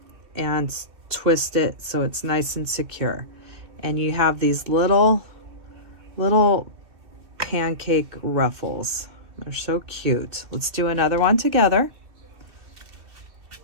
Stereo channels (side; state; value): left; late; 2.6 ms